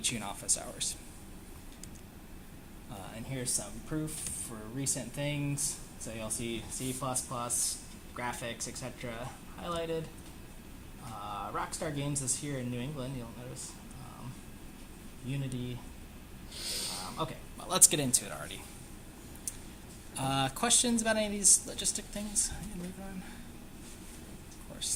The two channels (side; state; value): both; identical; correlation 1.00